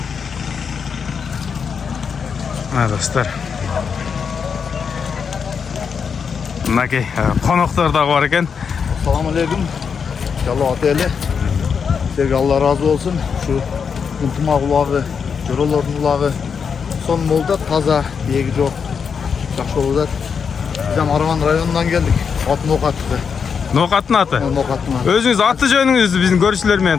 Достор. Мынакей коноктор дагы бар экен. Assalamu alaikum. İnşallah ateli. Sizlerge Allah razı olsun. Şu Kuntumak ulağı, Joroların ulağı son molda taza, diyegi yok. Жақсы olacak. Biz hem Aravan rayonundan geldik. At Nokat'tı. Nokat'ın atı. Nokat'ın atı. Özünüz atı jönüңüzdü bizim görüşçülerмен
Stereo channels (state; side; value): quieter; right; 6.3 dB